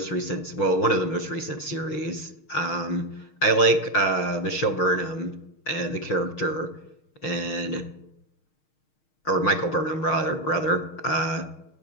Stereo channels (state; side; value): late; right; 6.4 ms